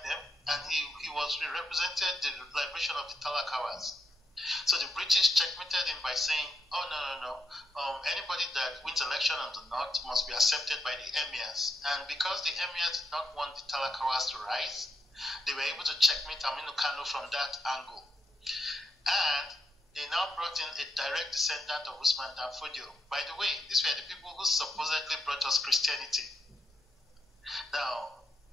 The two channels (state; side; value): normal; both; correlation 0.80